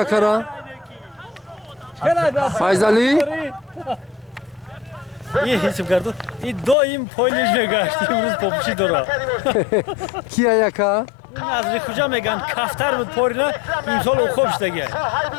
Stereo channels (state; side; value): drops out; right; at 6.8 s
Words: کرا فایزالی یه حساب کردو این دو این پولیش نگاشت امروز پوپشی داره کیه یکا نظری کجا میگن کفتر بود پورینا این سال خوبش دیگه